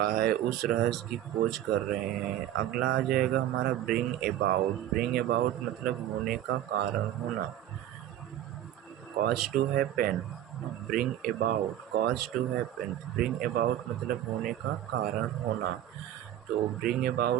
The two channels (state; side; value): quieter; left; 12.1 dB